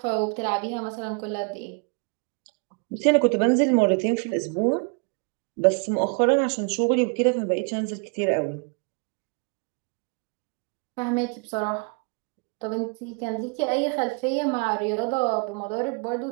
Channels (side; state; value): left; quieter; 34.6 dB